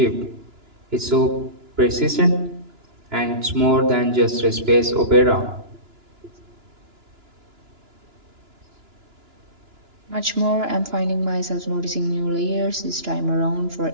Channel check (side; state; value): left; late; 2.9 ms